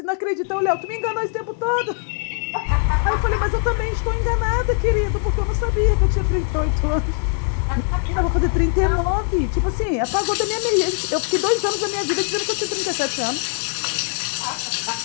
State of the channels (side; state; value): right; silent; 56 dB below the other